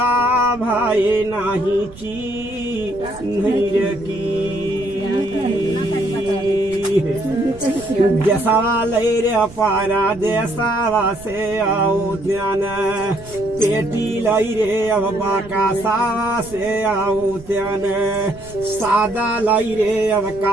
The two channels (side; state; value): right; noise; rumble, 18 dB below the sound